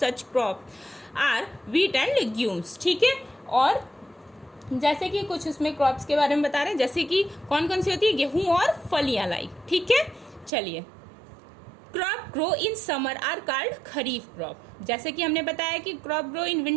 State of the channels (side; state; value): left; drops out; at 10.5 s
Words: crop are wheat and legumes, ठीक है। और जैसे कि कुछ उसमें क्रॉप्स के बारे में बता रहे हैं, जैसे कि कौन कौन सी होती है? गेहूं और फलियां लाई, ठीक है। चलिए, crop grow in summer are called kharif crop. जैसे कि हमने बताया कि crop grow in